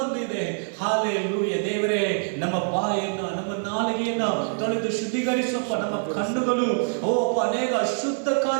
ಹಾಲೆಲೂಯ ದೇವರೇ, ನಮ್ಮ ಬಾಯನ್ನು, ನಮ್ಮ ನಾಲಿಗೆಯನ್ನ ತೊಳೆದು ಶುದ್ಧೀಕರಿಸಪ್ಪ. ನಮ್ಮ ಕಣ್ಣುಗಳು ಅನೇಕ ಅಶುದ್ಧ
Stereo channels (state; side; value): silent; left; digital silence